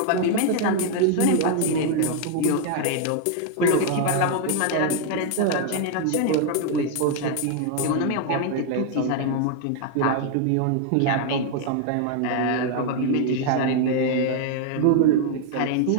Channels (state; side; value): different; both; correlation 0.00